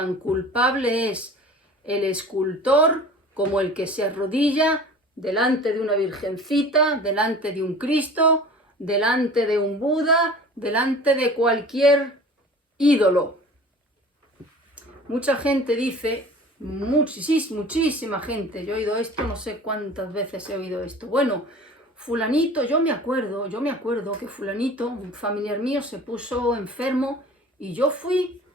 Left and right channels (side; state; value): both; normal; correlation 0.42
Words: culpable es el escultor como el que se arrodilla delante de una virgencita, delante de un Cristo, delante de un Buda, delante de cualquier ídolo. Mucha gente dice, muchísima gente, yo he oído esto, no sé cuántas veces he oído esto. Bueno, fulanito, yo me acuerdo que fulanito, un familiar mío, se puso enfermo y yo fui